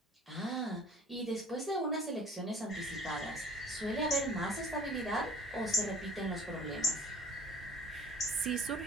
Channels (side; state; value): both; normal; correlation 0.49